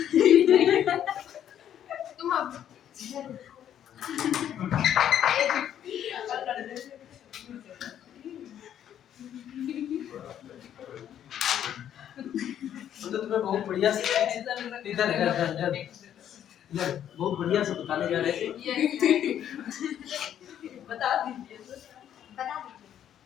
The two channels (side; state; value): right; quieter; 10.2 dB